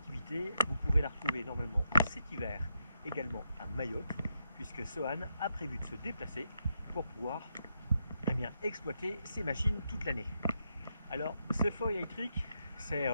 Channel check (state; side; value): inverted; both; correlation -0.81